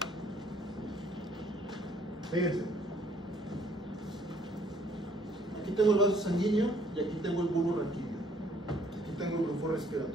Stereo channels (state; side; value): normal; both; correlation 0.63